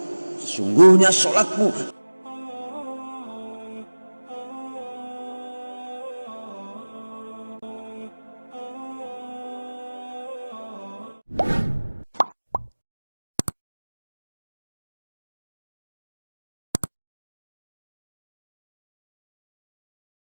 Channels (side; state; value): both; inverted; correlation -1.00